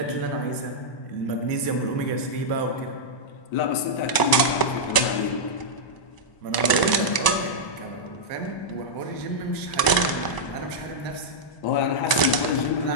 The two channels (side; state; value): right; late; 1.0 ms